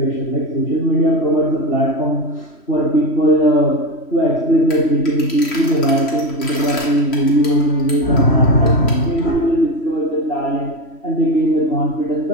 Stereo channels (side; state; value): right; late; 3.1 ms